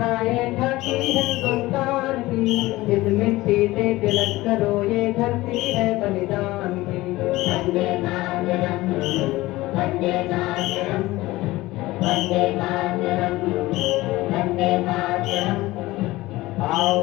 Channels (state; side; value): quieter; right; 18.7 dB